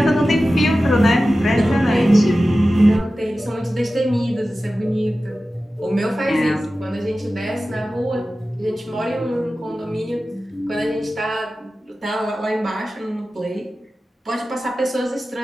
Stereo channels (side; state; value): both; normal; correlation 0.95